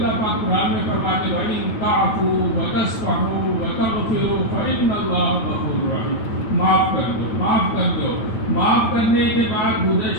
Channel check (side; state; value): right; late; 8.9 ms